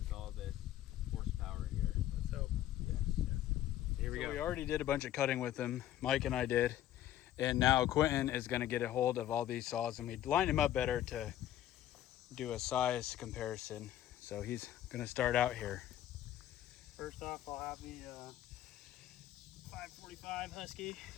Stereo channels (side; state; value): right; quieter; 12.5 dB